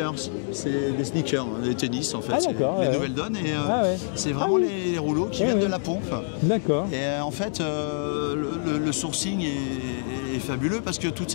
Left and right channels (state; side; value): silent; right; digital silence